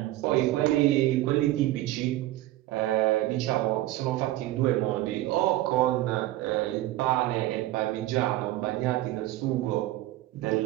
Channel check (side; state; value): left; quieter; 15.8 dB